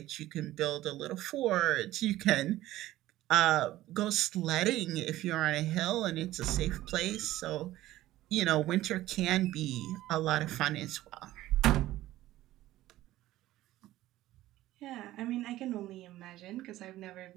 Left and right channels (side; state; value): left; quieter; 15.4 dB